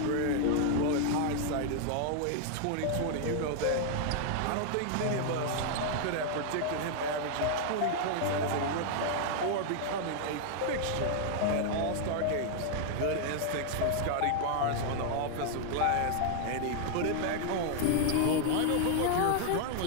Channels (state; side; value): different; both; correlation 0.00